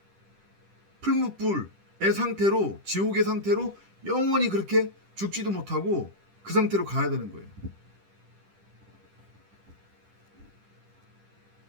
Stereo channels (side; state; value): left; late; 10 ms